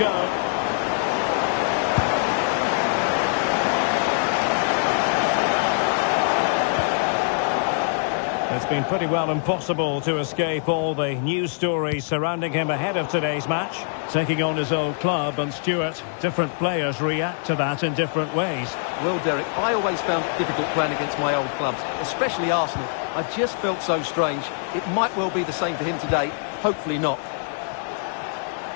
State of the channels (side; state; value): right; silent; digital silence